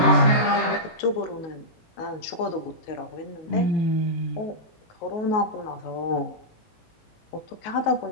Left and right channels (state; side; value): late; right; 18 ms